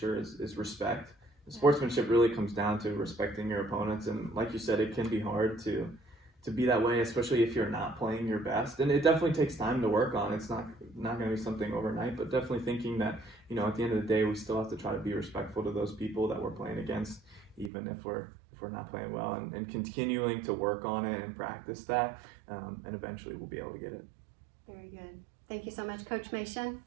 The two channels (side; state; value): left; drops out; at 17.7 s